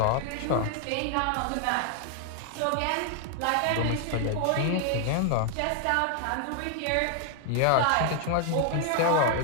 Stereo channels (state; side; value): different; both; correlation 0.00